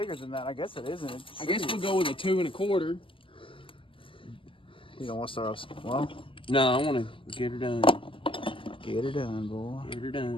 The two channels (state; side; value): late; right; 0.25 ms